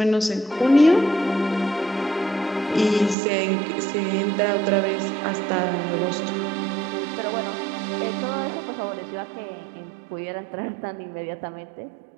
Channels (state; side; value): drops out; left; at 3.2 s